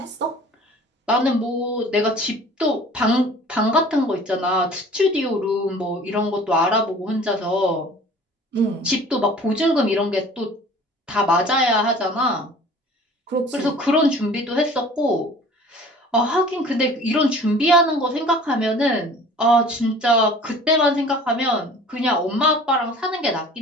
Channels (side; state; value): both; normal; correlation 0.46